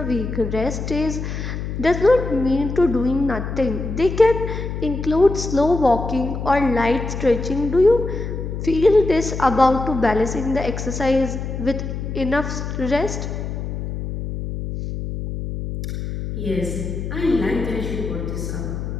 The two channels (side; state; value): left; noise; hum, 5 dB below the sound